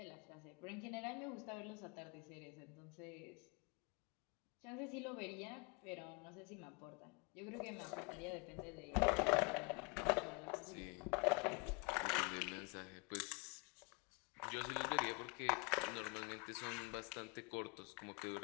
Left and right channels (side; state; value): right; quieter; 31.6 dB